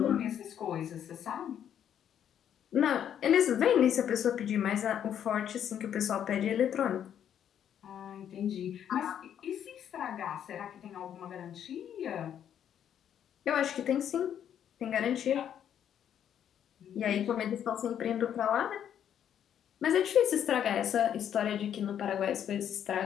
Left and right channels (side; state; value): right; quieter; 9.5 dB